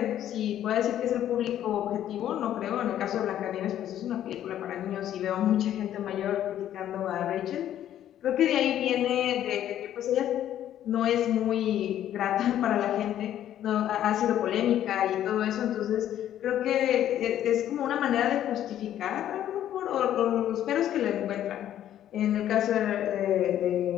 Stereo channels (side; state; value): right; quieter; 11.4 dB